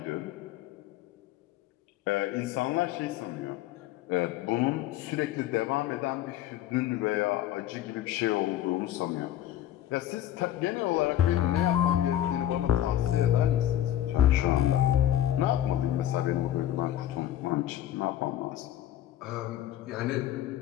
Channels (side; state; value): right; quieter; 12.3 dB